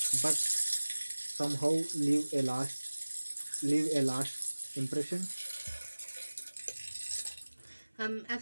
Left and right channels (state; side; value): inverted; both; correlation -1.00